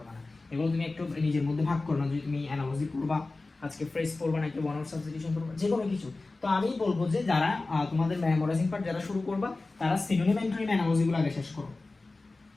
না। এগুলো তুমি একটু নিজের মধ্যে ভাগ করো না, যদি তুমি অ্যানালজি পড়বা, আজকে ফ্রেজ পড়বা, নাকি ওয়ান ওয়ার্ড সাবস্টিটিউশন পড়বা, যে কোনো কিছু। তো আমি বলবো যে যারা তোমাদের মেমোরাইজিং পার্ট যারা শুরু করবা, তারা সিনোনিম, অ্যান্টোনিম, অ্যানালজিগুলো আগে শেষ করো।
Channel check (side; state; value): right; quieter; 3.3 dB